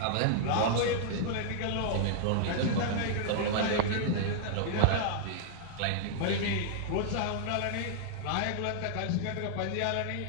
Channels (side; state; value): both; different; correlation -0.01